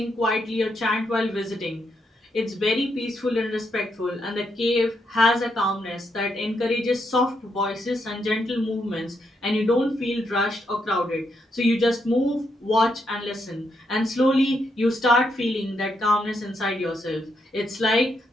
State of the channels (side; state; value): both; normal; correlation 0.79